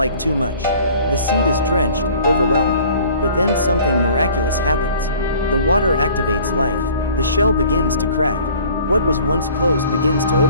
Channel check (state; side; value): inverted; both; correlation -0.50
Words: too much. The seed is drenched, overwhelmed. But then something miraculous happens. The water activates life. The shell begins to crack. What was once closed begins to